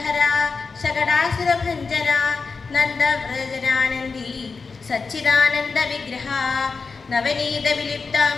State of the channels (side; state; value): right; quieter; 4.6 dB